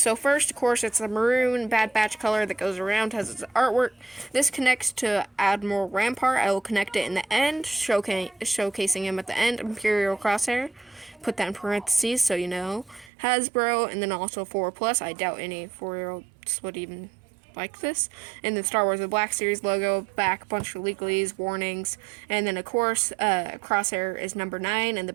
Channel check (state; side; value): drops out; left; at 13.1 s